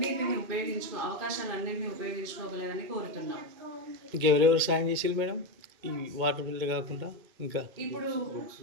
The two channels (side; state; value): left; late; 2.1 ms